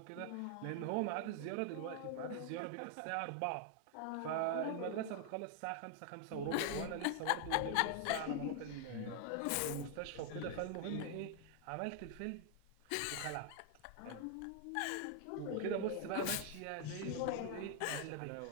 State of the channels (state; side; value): different; both; correlation 0.00